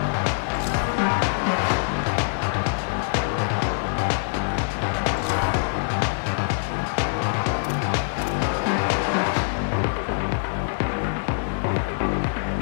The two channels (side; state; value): right; silent; digital silence